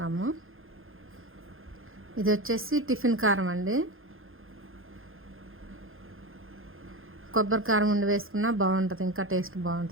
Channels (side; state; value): left; late; 0.60 ms